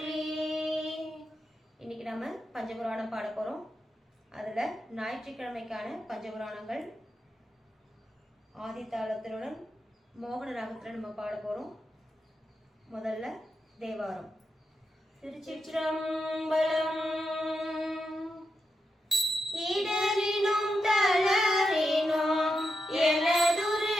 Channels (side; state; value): both; normal; correlation 0.86